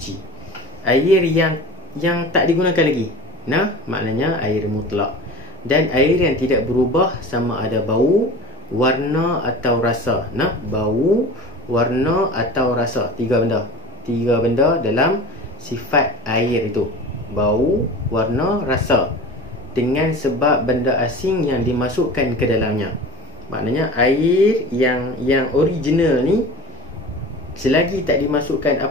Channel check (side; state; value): both; normal; correlation 0.36